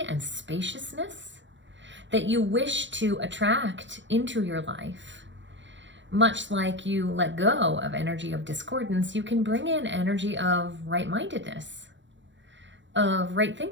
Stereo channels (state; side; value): late; left; 0.54 ms